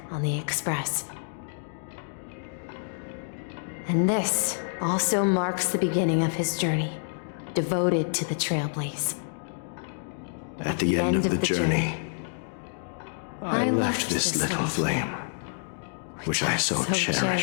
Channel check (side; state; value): right; silent; digital silence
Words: on the Express. And this also marks the beginning of his journey, devoted to the Trailblaze. At the end of the journey, I left this little flame, which I so